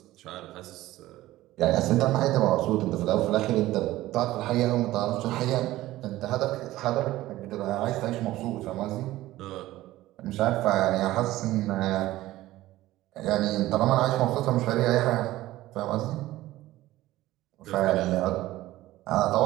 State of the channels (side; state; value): left; quieter; 16.2 dB